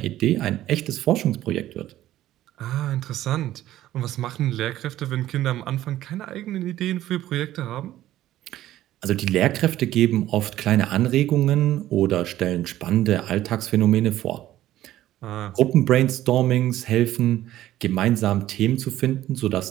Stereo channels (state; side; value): quieter; left; 13.9 dB